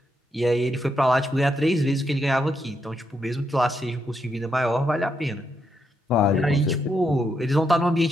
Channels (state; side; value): normal; both; correlation 0.80